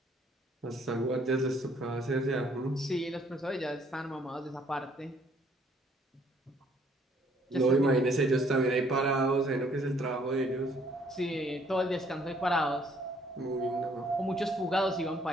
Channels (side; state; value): both; normal; correlation 0.64